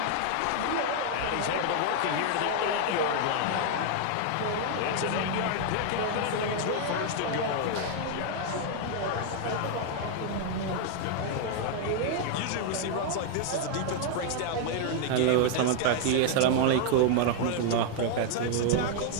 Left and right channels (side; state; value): both; different; correlation 0.00